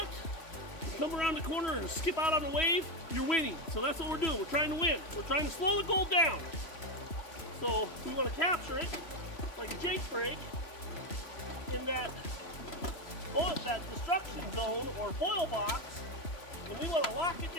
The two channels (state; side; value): late; right; 3.0 ms